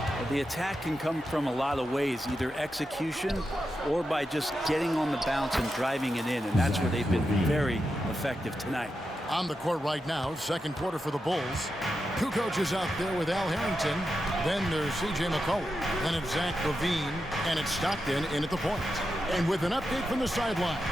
The attack can come from a lot of ways, either execution or by just getting on the bounce and driving it in, and that's where they've been very effective tonight. On the court right now, second quarter for the Bulls. Kukoc is out there with Al Harrington. Then there's C.J. McCollum. Then it's Zach LaVine, and it's Stockton in at the point. And with an update from the sidelines,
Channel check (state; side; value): normal; both; correlation 0.88